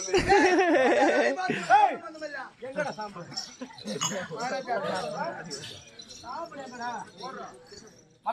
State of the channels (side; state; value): both; identical; correlation 1.00